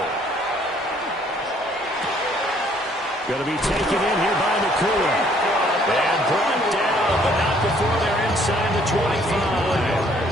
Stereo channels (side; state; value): both; normal; correlation 0.62